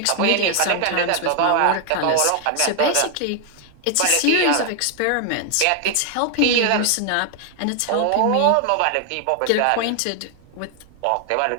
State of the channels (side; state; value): both; different; correlation 0.00